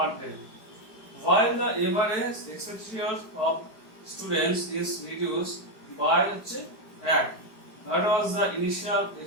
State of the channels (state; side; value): late; right; 4.5 ms